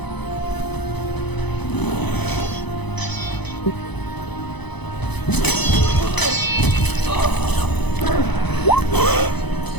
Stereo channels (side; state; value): right; late; 0.99 ms